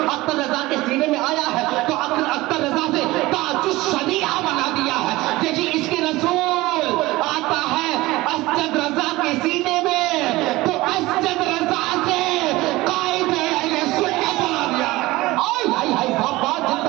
اختر رضا کے سینے میں آیا ہے تو اختر رضا سے تاج الشریعہ بنا دیا ہے، یہی عشق رسول آتا ہے اسجد رضا کے سینے میں تو اسجد رضا سے قائد اہل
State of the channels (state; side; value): quieter; left; 19.4 dB